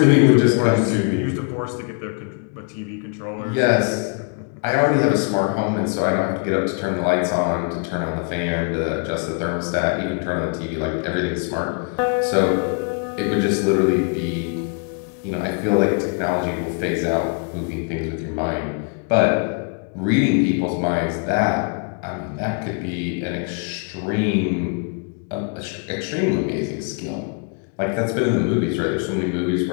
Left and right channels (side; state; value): right; quieter; 35.9 dB